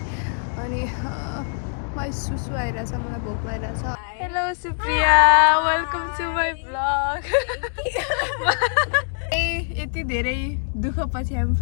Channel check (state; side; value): silent; right; digital silence